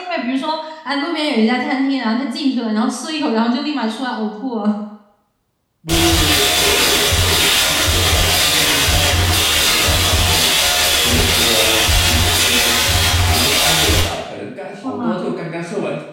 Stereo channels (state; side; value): identical; both; correlation 1.00